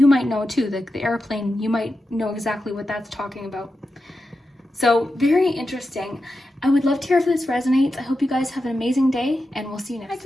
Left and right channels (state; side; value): normal; both; correlation 0.90